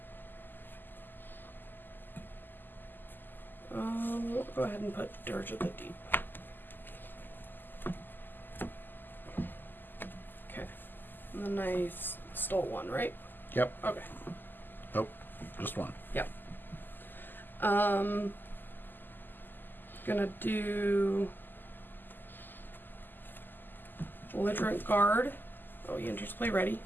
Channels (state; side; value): late; right; 0.091 ms